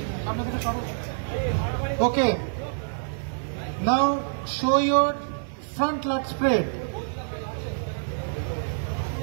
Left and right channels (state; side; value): silent; left; digital silence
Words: Okay. Now show your front lat spread.